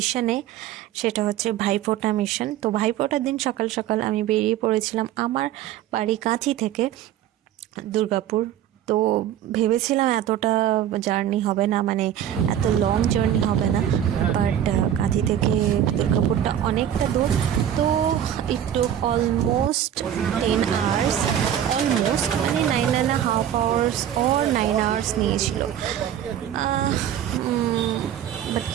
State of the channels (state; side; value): quieter; left; 10.5 dB